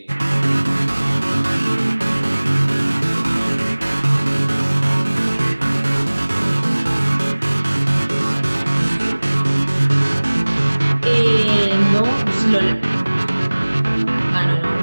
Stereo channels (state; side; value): inverted; both; correlation -1.00